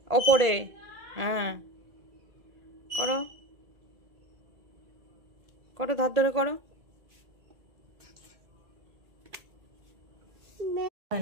ওপরে। হ্যাঁ, করো করো, ধার ধরে করো। হয়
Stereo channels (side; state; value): left; late; 1.8 ms